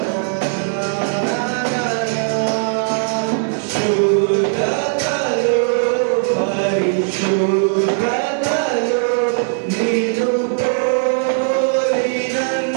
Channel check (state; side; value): silent; left; 67 dB below the other